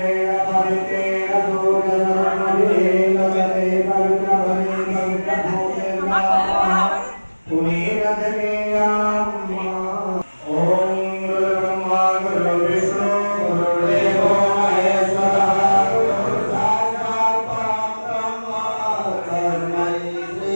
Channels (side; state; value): both; inverted; correlation -1.00